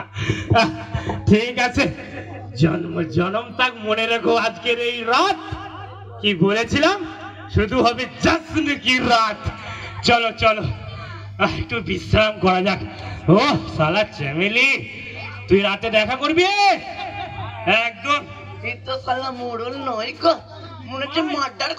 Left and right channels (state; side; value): identical; both; correlation 1.00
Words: ঠিক আছে, জন্ম জনম তাক মনে রেখো আজকের এই রাত। কি বলেছিলাম? শুধু হবে জশ্ন কি রাত। চলো চলো একটু বিশ্রাম করা যাক। ও শালা চ্যামেলি, তুই রাতে দেখা করবি একদম? এই তো শালা মোড়ল নয় গো, মনে হচ্ছে মার্ডার